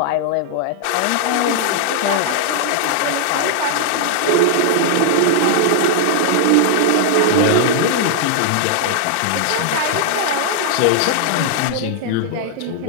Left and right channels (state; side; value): different; both; correlation -0.01